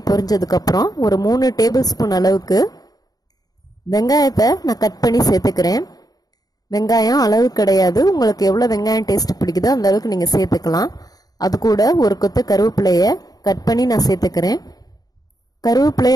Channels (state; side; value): late; right; 0.18 ms